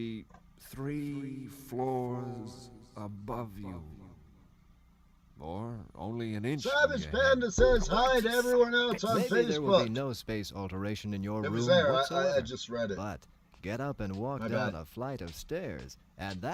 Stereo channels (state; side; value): identical; both; correlation 1.00